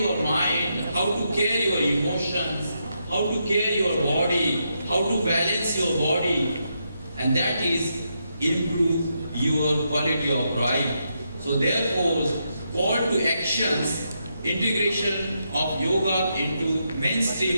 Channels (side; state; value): both; inverted; correlation -0.82